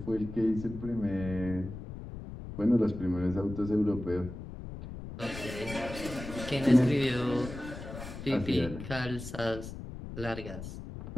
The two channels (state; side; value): noise; left; rumble, 10 dB below the sound